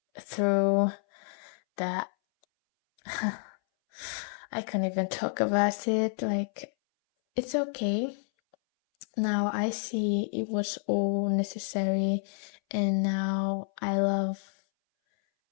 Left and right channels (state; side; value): silent; right; 58 dB below the other